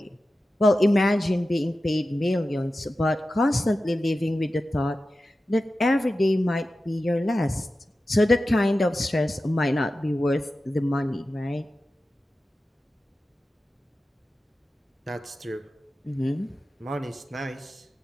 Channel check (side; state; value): both; normal; correlation 0.93